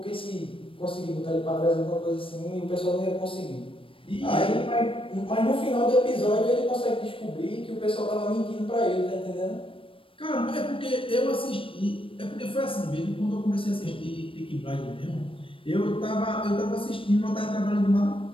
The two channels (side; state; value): right; late; 0.26 ms